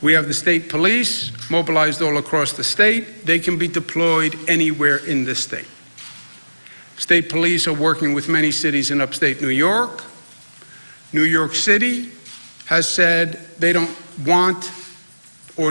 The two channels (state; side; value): inverted; both; correlation -1.00